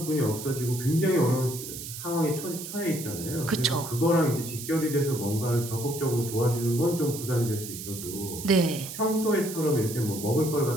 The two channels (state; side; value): noise; right; hiss, 9 dB below the sound